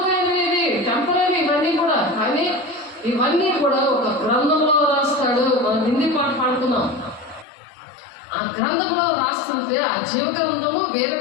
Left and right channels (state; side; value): drops out; right; at 7.5 s